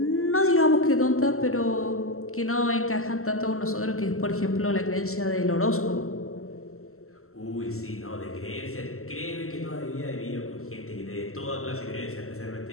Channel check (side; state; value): right; late; 0.63 ms